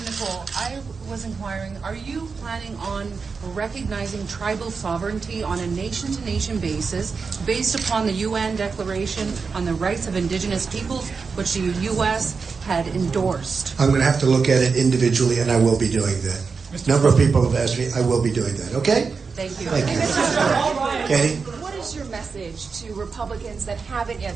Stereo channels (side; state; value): left; quieter; 5.0 dB